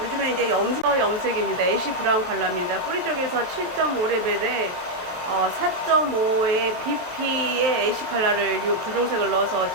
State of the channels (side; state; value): left; late; 23 ms